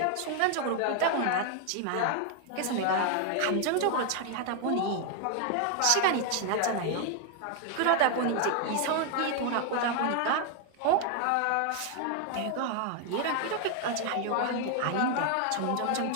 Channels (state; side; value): different; both; correlation 0.01